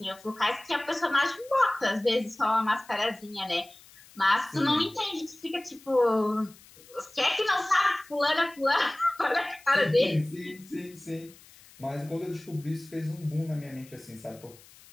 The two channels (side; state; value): left; noise; hiss, 24 dB below the sound